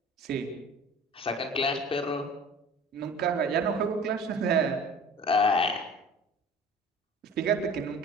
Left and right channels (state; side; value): normal; both; correlation 0.42